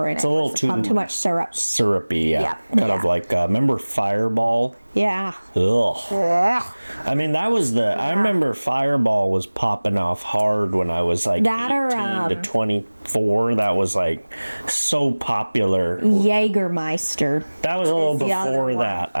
in it. It's a little too much syrup. Syrupy, yeah. Kind of like, remember Fireball? Yeah. Ugh. Yeah. I mean, that was I remember Fireball was popping off hard when I was like 18 to 24. That was like so popular. Jägermeister. That was a little before that,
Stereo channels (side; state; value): both; inverted; correlation -1.00